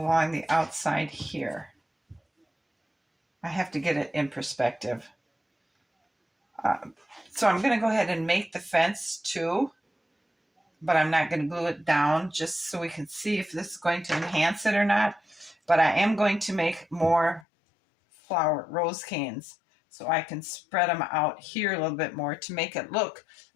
the outside here. I have to get it in perspective. So I'm going to go ahead and make the fence too, but I'm not going to glue it down, just so we can see if this is going to enhance it or not. But I am going to make more rose canes so I can spread them out here a little bit more to make it look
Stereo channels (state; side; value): drops out; right; at 17.4 s